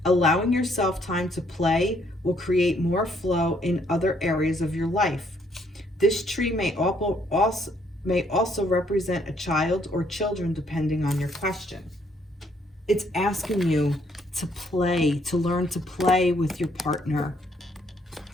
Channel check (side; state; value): both; normal; correlation 0.68